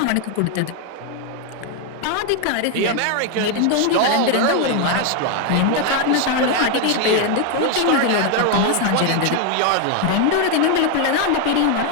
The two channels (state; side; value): different; both; correlation 0.01